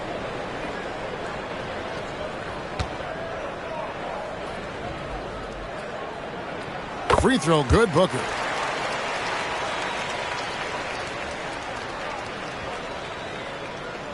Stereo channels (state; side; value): identical; both; correlation 1.00